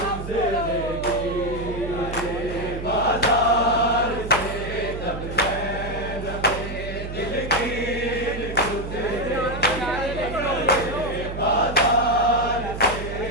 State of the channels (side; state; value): right; noise; hum, 8 dB below the sound